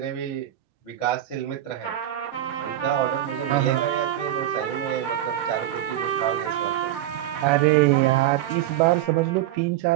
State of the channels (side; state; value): left; quieter; 12.7 dB